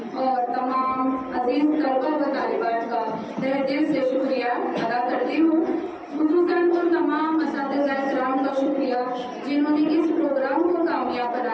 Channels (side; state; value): both; identical; correlation 1.00